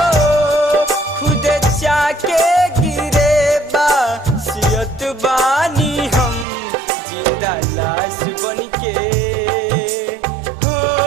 खुद जाके गिरे बा सियत बानी हम, जिंदा लाश बन के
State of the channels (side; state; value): left; drops out; at 6.5 s